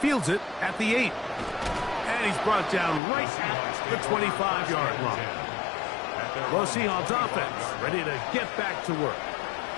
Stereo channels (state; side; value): drops out; right; at 3.0 s